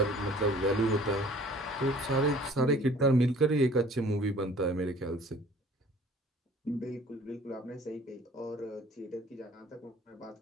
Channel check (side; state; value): both; normal; correlation 0.52